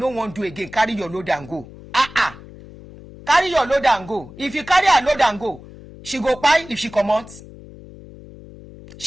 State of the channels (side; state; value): left; noise; hum, 18 dB below the sound